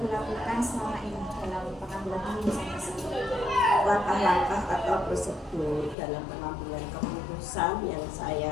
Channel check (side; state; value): right; drops out; at 6.0 s